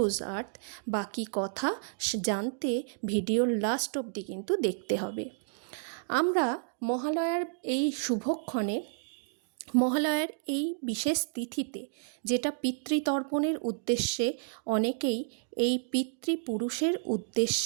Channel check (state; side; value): silent; left; digital silence